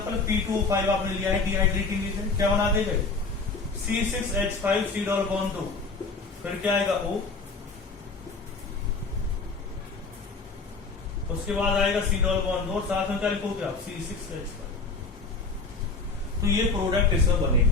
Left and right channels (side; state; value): right; quieter; 4.1 dB